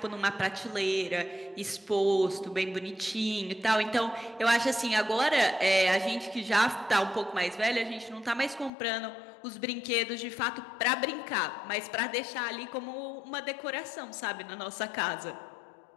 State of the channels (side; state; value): right; drops out; at 8.7 s